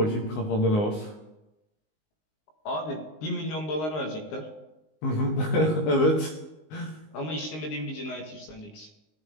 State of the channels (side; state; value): right; late; 19 ms